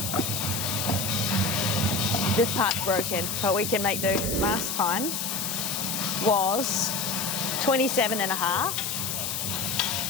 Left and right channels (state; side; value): noise; left; hiss, 3 dB below the sound